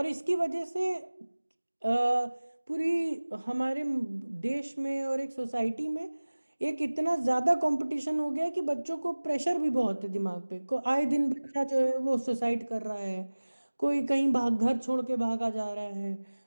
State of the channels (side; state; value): both; inverted; correlation -1.00